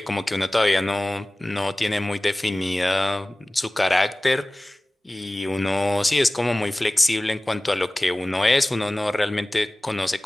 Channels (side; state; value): both; normal; correlation 0.98